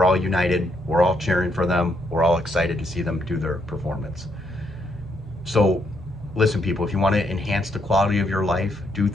all united, we're all cheering for them, we're all excited to see them do their performance. So listen, people, if you want to enhance the quality of your life, do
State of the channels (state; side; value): normal; both; correlation 0.75